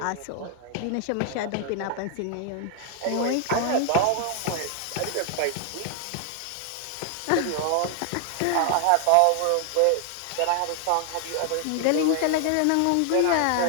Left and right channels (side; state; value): both; different; correlation 0.00